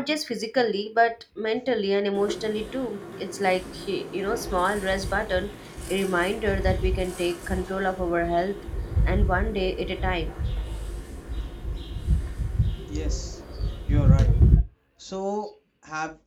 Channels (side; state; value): both; identical; correlation 1.00